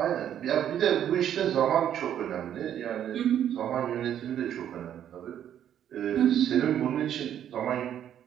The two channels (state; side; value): quieter; left; 10.1 dB